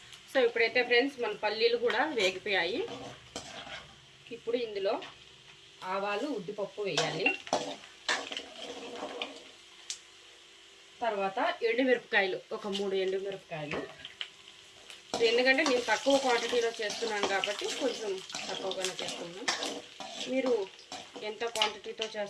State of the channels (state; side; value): identical; both; correlation 1.00